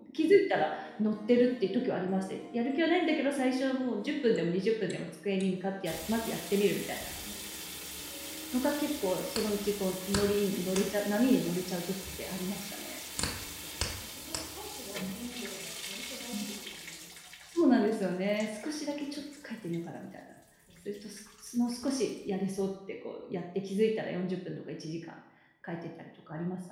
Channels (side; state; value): both; identical; correlation 1.00